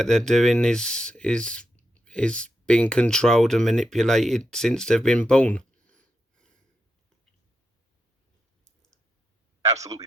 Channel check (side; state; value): both; normal; correlation 0.85